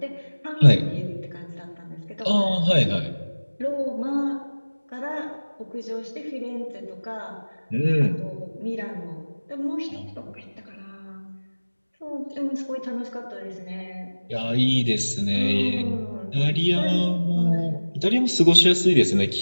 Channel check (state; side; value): inverted; both; correlation -1.00